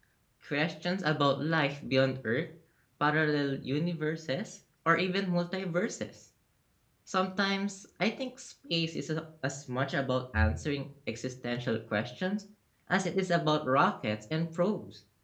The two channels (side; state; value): both; identical; correlation 1.00